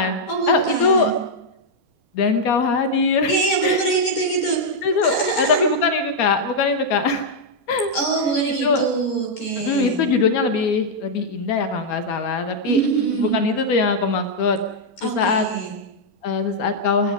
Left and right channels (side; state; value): right; late; 4.3 ms